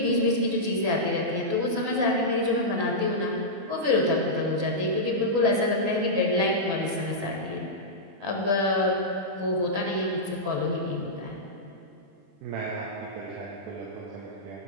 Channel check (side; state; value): left; late; 21 ms